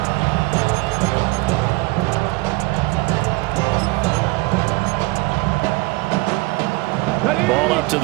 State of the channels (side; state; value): left; quieter; 23.3 dB